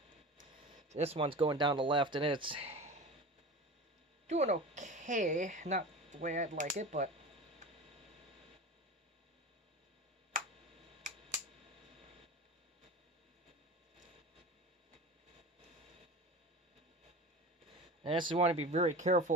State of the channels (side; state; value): both; normal; correlation 0.32